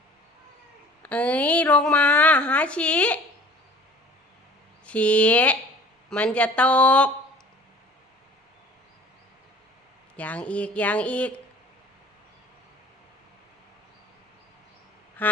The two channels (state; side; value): normal; both; correlation 0.47